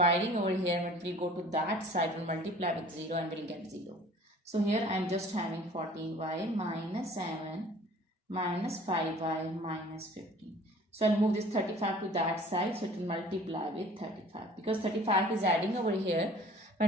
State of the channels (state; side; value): normal; both; correlation 0.49